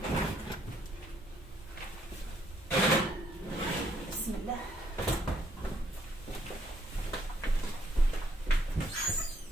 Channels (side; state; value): both; normal; correlation 0.70